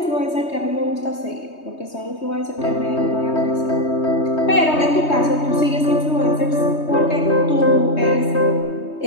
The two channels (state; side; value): late; right; 3.2 ms